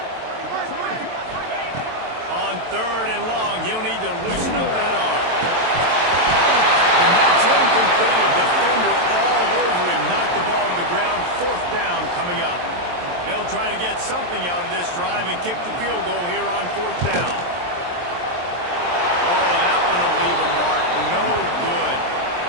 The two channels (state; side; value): late; left; 23 ms